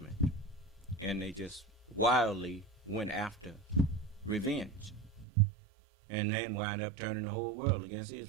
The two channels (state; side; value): drops out; left; at 5.2 s